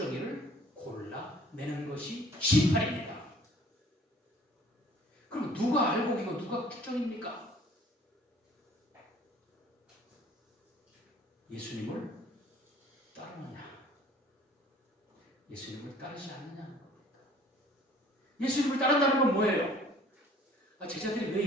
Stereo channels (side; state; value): both; normal; correlation 0.53